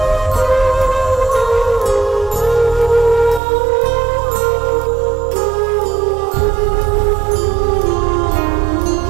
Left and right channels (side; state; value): left; drops out; at 3.4 s